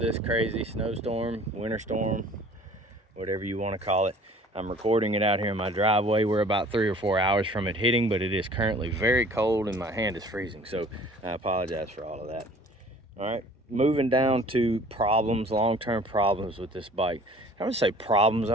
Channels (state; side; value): normal; both; correlation 0.50